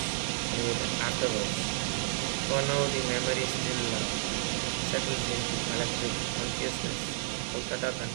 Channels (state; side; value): silent; left; digital silence